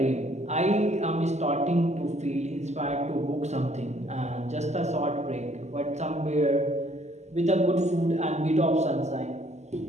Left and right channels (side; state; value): left; late; 0.33 ms